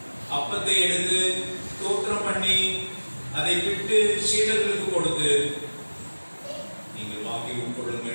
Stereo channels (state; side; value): inverted; both; correlation -1.00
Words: அப்பத்தை எடுத்து ஸ்தோத்திரம் பண்ணி அதை விட்டு சீடர்களுக்கு கொடுத்து, நீங்கள் வாங்கி